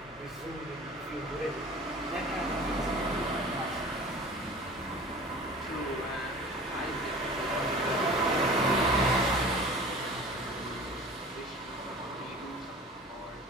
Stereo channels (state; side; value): normal; both; correlation 0.41